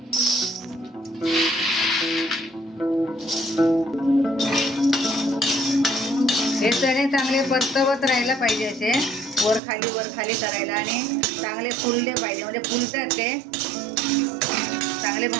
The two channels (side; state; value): left; drops out; at 9.6 s